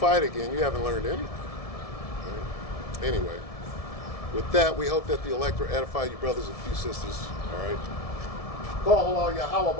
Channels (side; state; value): right; late; 1.7 ms